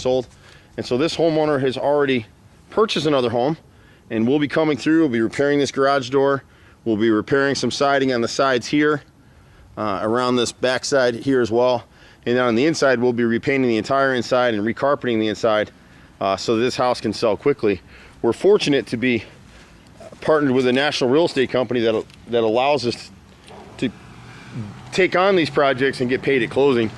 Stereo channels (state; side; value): identical; both; correlation 1.00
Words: And so this homeowner has already purchased another home, and we'll be coming through. We'll be repairing this garage door. We'll be repairing some siding on the sides here, around this back side here as well. And then on the inside, we'll be repainting the entire inside and recarpeting the inside so this house can sell quickly. We're fortunate to be partnered with a national real estate company that allows us to take on these projects and get paid at closing.